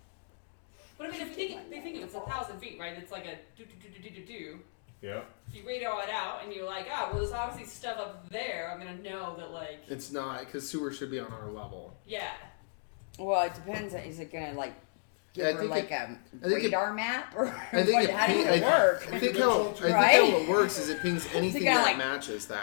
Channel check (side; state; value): right; silent; digital silence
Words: But I mean, if you think it's 1,000 feet, right? It's like a do. Yeah. If you radio it out and you're like, ah, well, there's obviously stuff up there. I'm gonna know that, like, it's not, because sewer should be on our level. yeah. Well, it depends. Is it gonna like give Yeah, I her think like it- a I think it- radar map or I think what, it how does ping- it work? I think how Right? it works is it pings anything kinda that like- matches